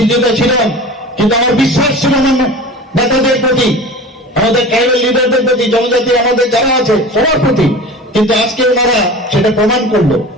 ছিলাম, কিন্তু আমার বিশ্বাস ছিল আমার নেতাদের প্রতি, আমাদের ট্রাইবাল লিডারদের প্রতি, জনজাতি আমাদের যারা আছে সবার প্রতি, কিন্তু আজকে ওনারা সেটা প্রমাণ করলো।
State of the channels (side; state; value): both; normal; correlation 0.36